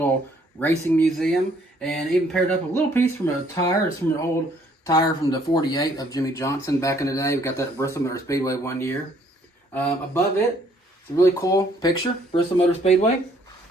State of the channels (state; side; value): normal; both; correlation 0.63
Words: racing museum. And even paired up a little piece from a tire. It's from an old tire from the 48 of Jimmy Johnson back in the day. We got that at Bristol Motor Speedway one year. Above it, it's a really cool picture, Bristol Motor Speedway.